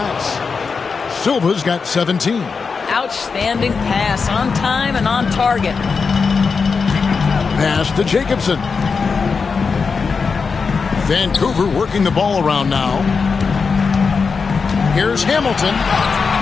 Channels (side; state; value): right; quieter; 5.1 dB